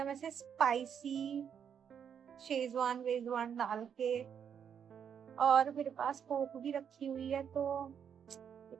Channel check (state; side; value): quieter; left; 7.9 dB